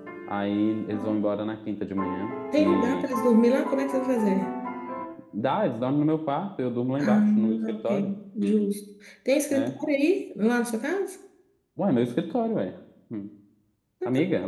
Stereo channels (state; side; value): identical; both; correlation 1.00